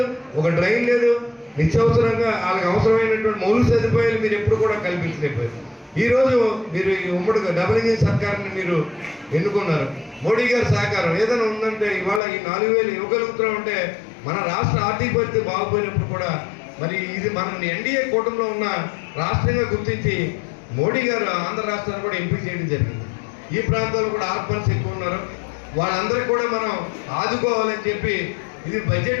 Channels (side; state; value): right; drops out; at 12.2 s